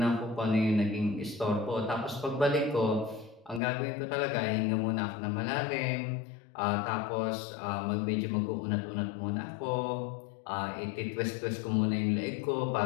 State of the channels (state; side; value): drops out; right; at 3.6 s